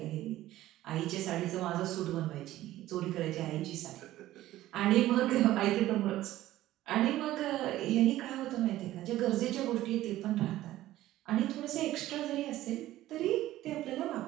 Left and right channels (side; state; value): left; quieter; 14.9 dB